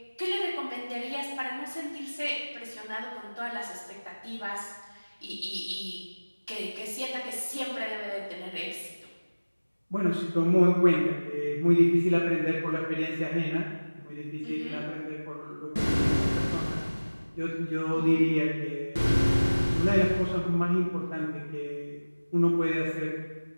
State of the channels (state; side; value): inverted; both; correlation -1.00